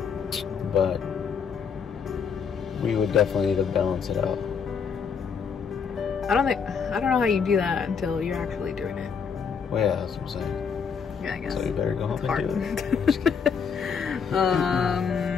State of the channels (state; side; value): quieter; right; 6.3 dB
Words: But we would definitely need to balance it out. I don't know how you do that until you're actually doing it. Well, yeah, that's what I'm saying. Yeah, I guess. So you better go home and do it.